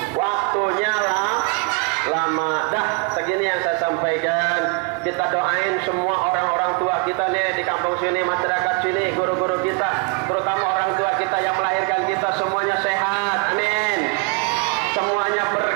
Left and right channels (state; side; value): quieter; left; 32.1 dB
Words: Waktunya lama. Dah, segini yang saya sampaikan. Kita doain semua orang-orang tua kita nih di kampung sini, masyarakat sini, guru-guru kita, terutama orang tua kita yang melahirkan kita, semuanya sehat, amin. Semuanya